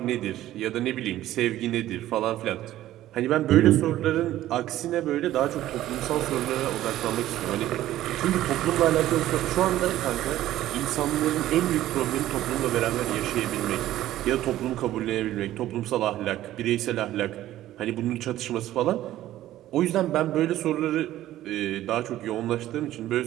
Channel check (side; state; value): left; quieter; 14.0 dB